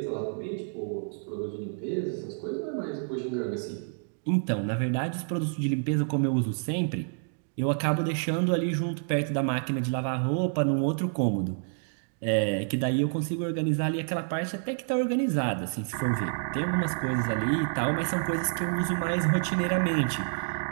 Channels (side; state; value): left; silent; digital silence